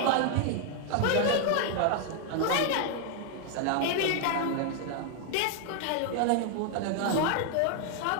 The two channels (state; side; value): different; both; correlation 0.00